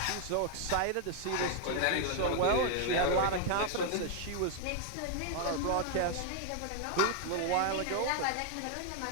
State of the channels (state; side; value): different; both; correlation 0.00